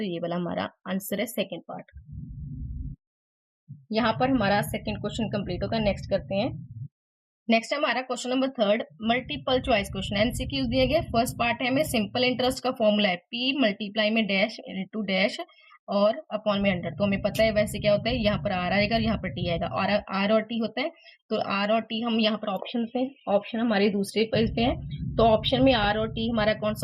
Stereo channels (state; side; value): identical; both; correlation 1.00